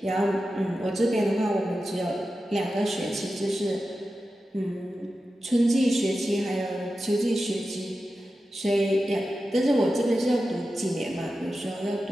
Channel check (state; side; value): normal; both; correlation 0.92